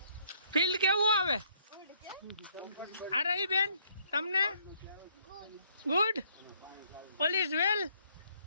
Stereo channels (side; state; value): both; inverted; correlation -0.66